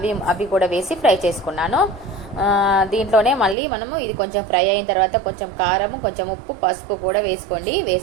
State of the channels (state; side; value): drops out; left; at 3.6 s